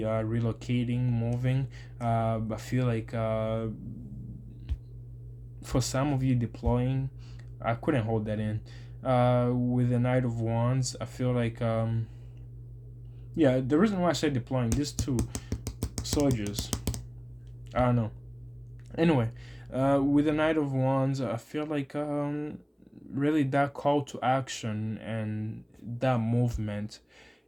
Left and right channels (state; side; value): identical; both; correlation 1.00